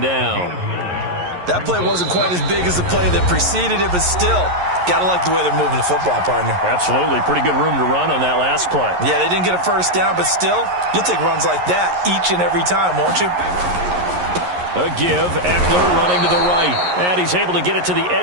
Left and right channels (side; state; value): left; late; 11 ms